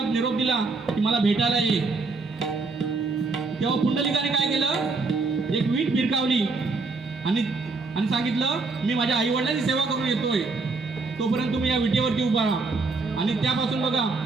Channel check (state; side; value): quieter; left; 3.8 dB